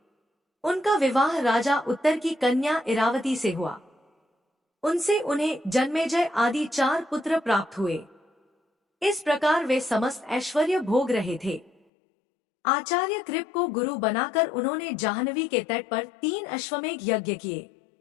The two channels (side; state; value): right; drops out; at 11.7 s